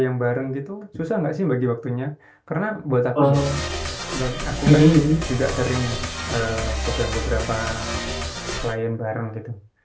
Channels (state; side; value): identical; both; correlation 1.00